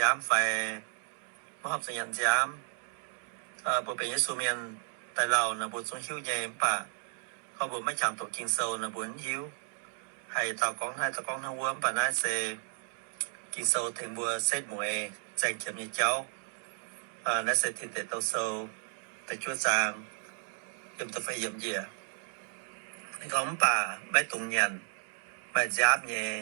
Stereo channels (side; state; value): left; silent; 56 dB below the other